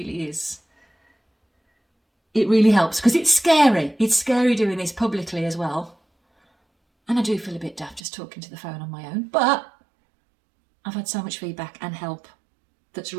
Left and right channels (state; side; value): drops out; left; at 8.0 s